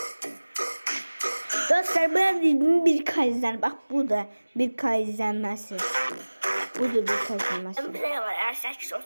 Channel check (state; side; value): inverted; both; correlation -1.00